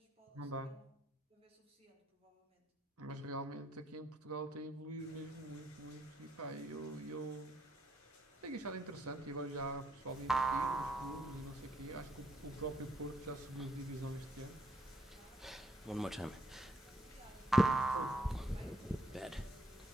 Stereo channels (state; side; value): normal; both; correlation 0.71